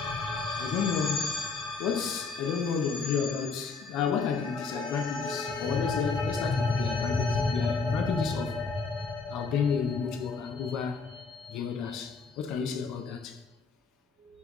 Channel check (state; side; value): quieter; right; 4.8 dB